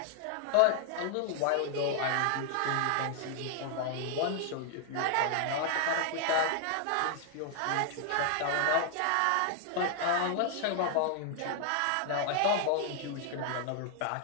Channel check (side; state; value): both; different; correlation 0.00